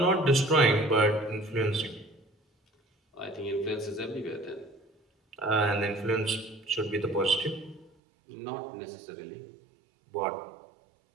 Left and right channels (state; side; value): drops out; left; at 7.9 s